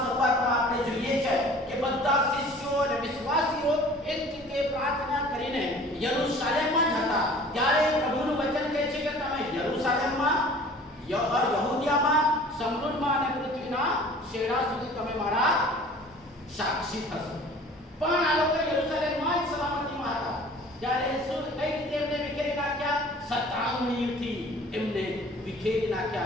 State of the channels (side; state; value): both; normal; correlation 0.47